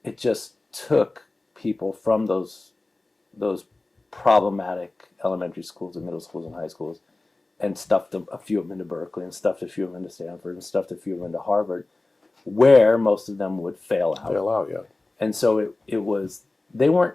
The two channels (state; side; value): quieter; right; 3.0 dB